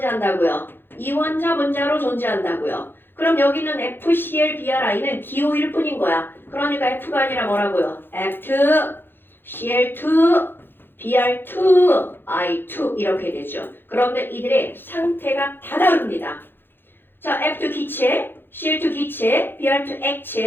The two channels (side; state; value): right; late; 0.10 ms